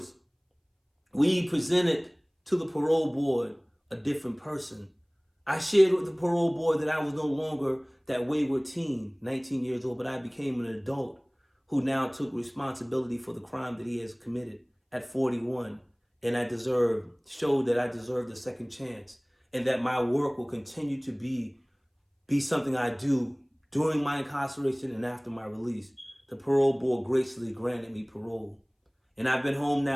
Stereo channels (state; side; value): identical; both; correlation 1.00